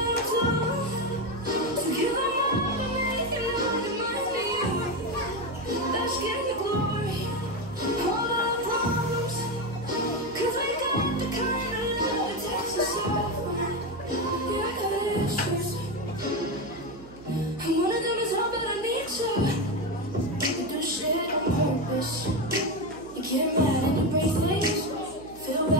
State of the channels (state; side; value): noise; right; hum, 20 dB below the sound